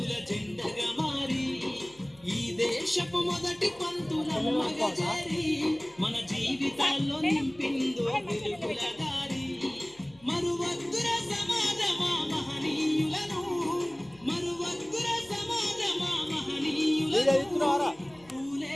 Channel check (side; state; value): left; noise; hum, 27 dB below the sound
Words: జెండగా మారి ఈ దేశపు మొదటి పంతులమ్మగా చేరి మన జీవితాల్లో నింపిందో వెలుగుల దారి. మరువద్దుర సమాజమా మహనీయులను, మరువద్దుర సమాజమా మహనీయులను,